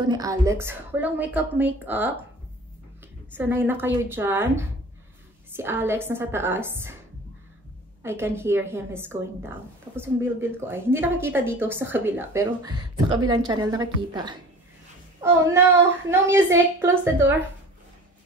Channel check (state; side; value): normal; both; correlation 0.42